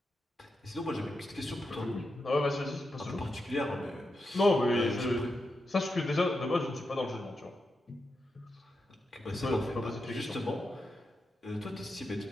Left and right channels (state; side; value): normal; both; correlation 0.87